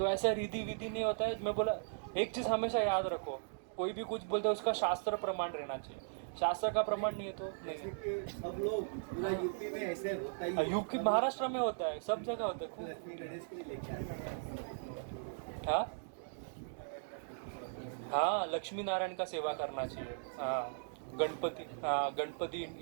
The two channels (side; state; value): left; silent; digital silence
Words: ऐसा रीति विधि नहीं होता है। मैं बोला एक चीज़ हमेशा याद रखो, कोई भी कुछ बोलते है उसका शास्त्र प्रमाण रहना चाहिए, शास्त्र का प्रमाण नहीं है तो जैसे नहीं। कि सब लोग पूरा यूपी में ऐसे होता ही है। यूपी महाराष्ट्र में होता है, सब जगह होता है। लक्ष्मी गणेश के लिए लेके आते हैं। हाँ हाँ, लक्ष्मी नारायण का सेवा करना चाहिए। हाँ गणपति, हाँ गणपति